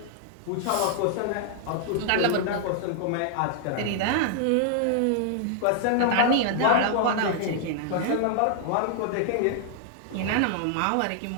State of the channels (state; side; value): different; both; correlation -0.01